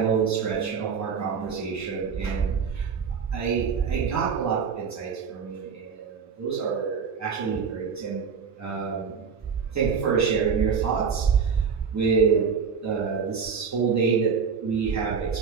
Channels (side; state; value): left; quieter; 6.1 dB